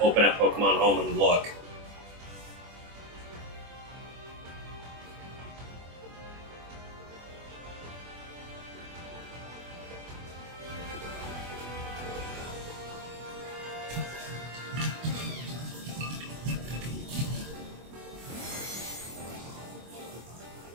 open up Pokemon Home and look.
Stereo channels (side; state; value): left; late; 24 ms